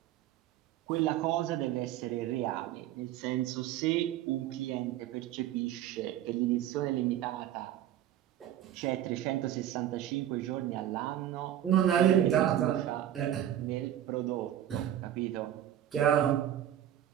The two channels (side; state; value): left; quieter; 11.6 dB